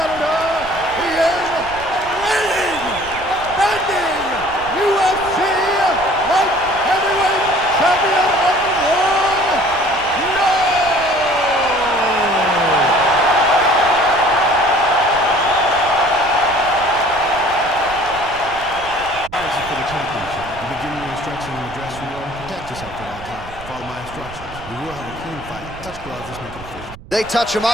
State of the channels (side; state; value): right; noise; rumble, 17 dB below the sound